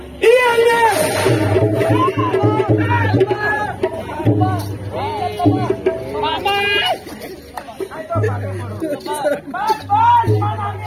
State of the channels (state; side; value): identical; both; correlation 1.00